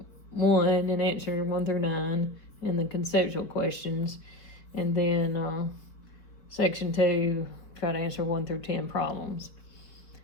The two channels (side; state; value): right; late; 4.8 ms